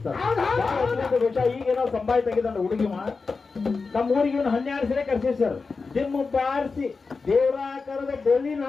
ಸರ್. ಈಗೇನೋ ಸಂಭಾಯ ತೆಗೆದ ಹುಡುಗಿಮ ನಮ್ಮ ಊರಿಗೆ ಇವನು 12 ಸರಿ ಕರ್ಸಿ ಸರ್. ಡಿಮ್ ಬಾರಿಸಿ ದೇವರಾಕಾರದ ಡೊಳ್ಳಿ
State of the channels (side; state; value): right; quieter; 4.4 dB